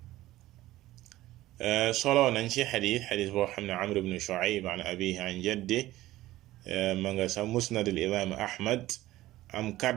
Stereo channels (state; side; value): quieter; left; 16.1 dB